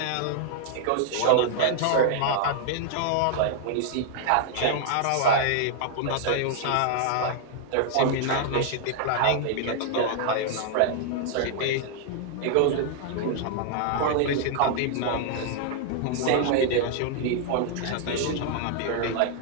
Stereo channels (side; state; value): both; different; correlation 0.00